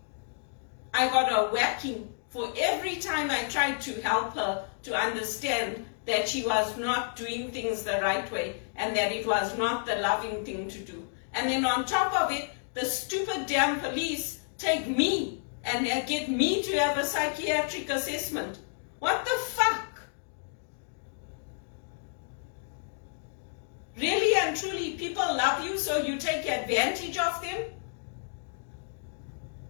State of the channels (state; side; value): silent; right; digital silence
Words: I got a whacking for every time I tried to help her to understand that she was not doing things the right way and that it was not the loving thing to do. And then on top of it, the stupid damn police take me and get me to have a psychiatric assessment. What the fuck? Really and truly, people love you, so you take advantage of them?